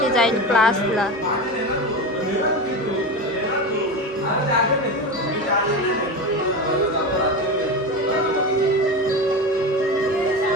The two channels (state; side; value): normal; both; correlation 0.23